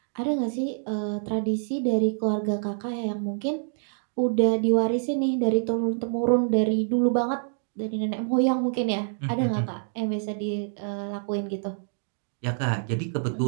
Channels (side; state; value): left; silent; digital silence